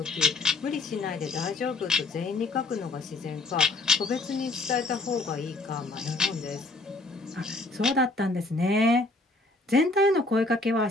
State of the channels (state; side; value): quieter; right; 3.0 dB